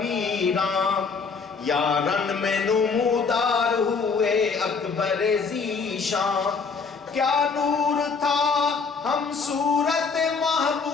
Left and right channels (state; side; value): quieter; right; 5.0 dB